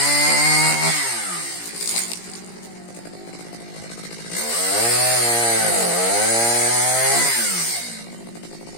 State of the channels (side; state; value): right; late; 17 ms